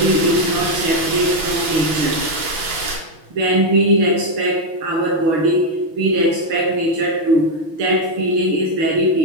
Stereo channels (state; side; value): late; left; 6.2 ms